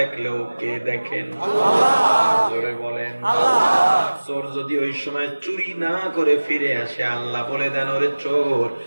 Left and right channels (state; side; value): inverted; both; correlation -1.00